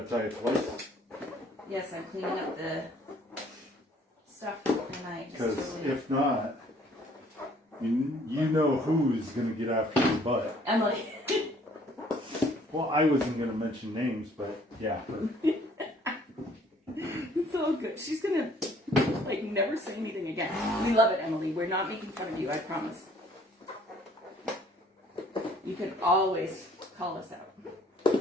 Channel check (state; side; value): normal; both; correlation 0.59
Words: it twice? Yes, I'm cleaning up the stuff and I just Because totally... if not, you know who's gonna get after your butt. Emily. Well, I wasn't gonna mention names, but yeah. It's all good. She's gonna, like, never say anything again. We love it, Emily. We're not making fun of you, I promise. You can always call us out.